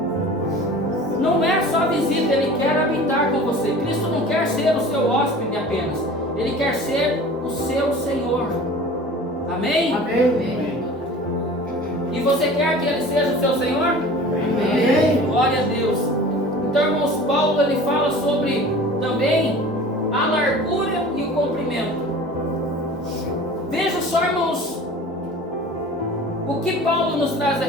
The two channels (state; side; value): normal; both; correlation 0.41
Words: Não é só visita, Ele quer habitar com você. Cristo não quer ser o seu hóspede apenas. Ele quer ser o seu Senhor. Amém? Amém. E você quer que Ele seja o seu Senhor? Amém. Glória a Deus. Então, irmãos, Paulo ele fala sobre também a largura e o comprimento. Veja só, irmãos, o que Paulo nos traz